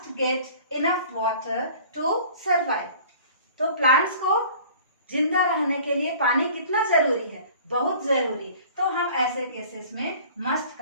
get enough water to survive. तो प्लांट्स को जिंदा रहने के लिए पानी कितना जरूरी है? बहुत जरूरी। तो हम ऐसे केसेस में मस्ट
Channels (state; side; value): inverted; both; correlation -0.47